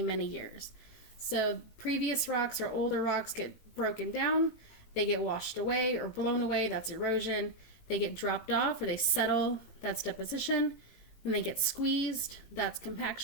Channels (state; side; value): late; right; 18 ms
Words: years. So previous rocks or older rocks get broken down, they get washed away or blown away, that's erosion. They get dropped off or they settle, that's deposition. Then they get squeezed, that's